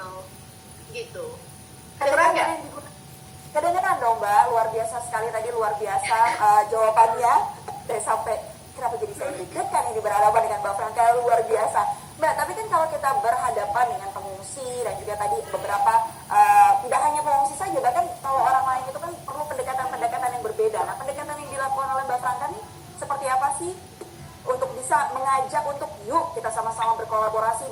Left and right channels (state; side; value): identical; both; correlation 1.00